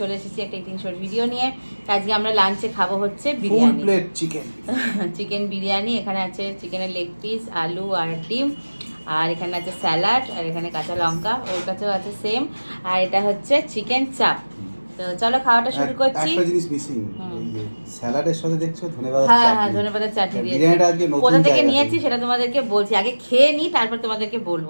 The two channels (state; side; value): inverted; both; correlation -1.00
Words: এসেছি একটা ইটিং শোর ভিডিও নিয়ে। আজকে আমরা লাঞ্চে খাবো হচ্ছে full biryani, plate chicken. Chicken biryani. এখানে আছে চিকেনের লেগ পিস, আলু আর ডিম, আর এখানে আছে স্যালাড, আর এখানে কাঁচা লঙ্কা, ওর কাছেও আছে সেম। আর এটা হচ্ছে চিকেন চাপ। তো চলো খাওয়াটা শুরু করছি। একটা জিনিস মিসিং, এই যে স্যালাডের সাথে দেখছো ধনেপাতার হ্যাঁ চাটনি। হ্যাঁ, ধনেপাতার চাটনি দিয়েছি। বিরিয়ানিটা আজকে নতুন কোথা থেকে জায়গা নিয়েছি সেটা তোমাদেরকে বলছি, আগে খেয়ে নিই তারপর তোমাদেরকে